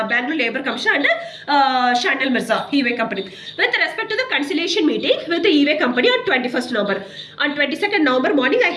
Labour Commissioner and Anand Mirza, e-way company, with respect to the conciliation meeting with the e-way company on 21st November. On 22nd November morning I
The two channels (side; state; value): both; identical; correlation 1.00